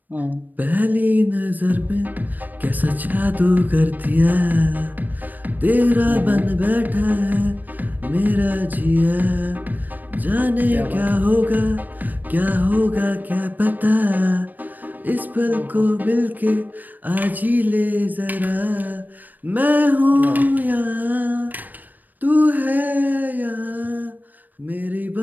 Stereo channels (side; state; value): left; late; 0.086 ms